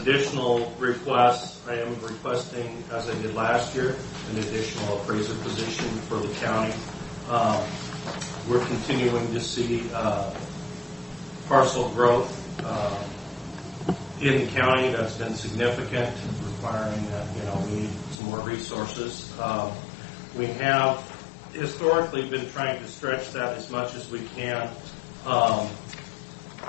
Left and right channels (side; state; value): right; drops out; at 18.2 s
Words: requests, I am requesting, as I did last year, an additional appraiser position for the county. We're continuing to see parcel growth. in the county that's been significant, requiring that, we need some more resources. We have historically been trying to stretch that as much as we can.